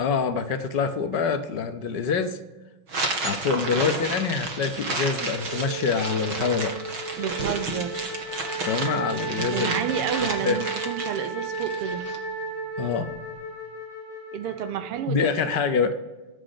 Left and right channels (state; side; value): late; left; 6.2 ms